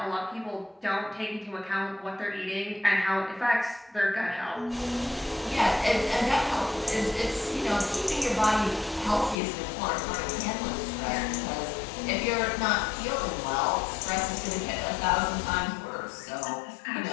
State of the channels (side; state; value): right; drops out; at 9.3 s